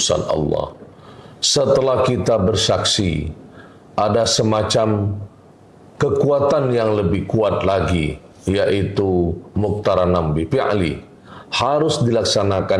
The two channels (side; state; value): both; identical; correlation 1.00